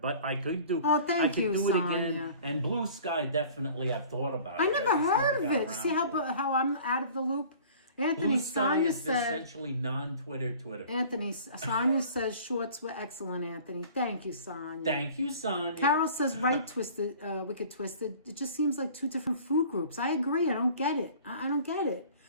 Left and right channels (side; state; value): both; inverted; correlation -0.47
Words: I could do. Oh, thank you, I could do Sonia. it again. And Blue Sky, definitely, I've thought about it. I never heard of got it. See around to it. how I'm out of the loop? Anthony, Blue Sky Sonia is said. essentially non-Twitter Twitter. Anthony, Sonia says shorts were excellent, Anthony. Thank you, Sonia. Thank you, Sonia. Carol says Wicked Twisted. It just seems like 2 different food groups. I agree. I don't get it. I don't get it.